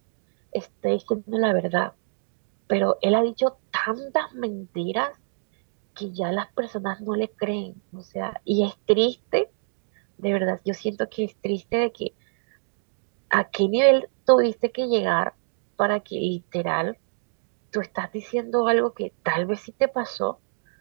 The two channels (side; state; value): left; silent; digital silence